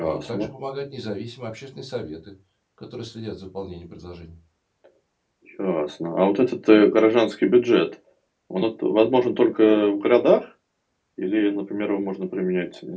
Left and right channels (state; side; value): identical; both; correlation 1.00